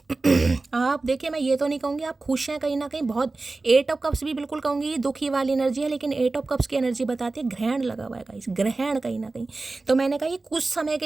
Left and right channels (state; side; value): quieter; left; 3.4 dB